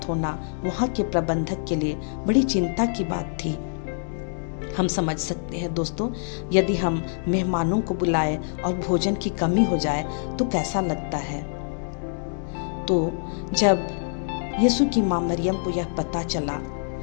होना वहाँ के प्रबंधक के लिए बड़ी चिंता की बात थी। हम समझ सकते हैं दोस्तों, यदि हम मेहमानों को बुलाए और भोजन की कमी हो जाए तो कैसा लगता है। तो जब यीशु की मां मरियम को यह पता चला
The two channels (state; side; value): silent; right; digital silence